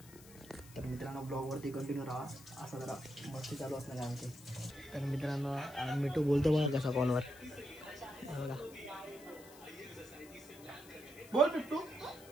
तर मित्रांनो ब्लॉग वरती कंटिन्यू राहा. असा जरा मस्ती चालू असणार आहे आमची. तर मित्रांनो मिठू बोलतो बघा कसा कॉलवर. बघा बोल बिट्टू.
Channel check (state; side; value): noise; left; hiss, 20 dB below the sound